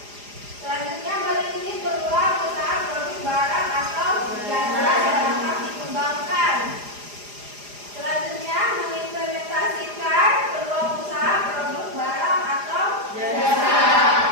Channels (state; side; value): late; left; 4.9 ms